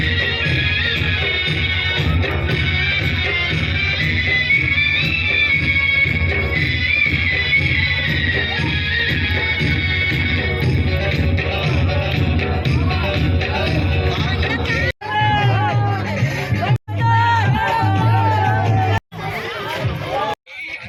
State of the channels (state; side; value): identical; both; correlation 1.00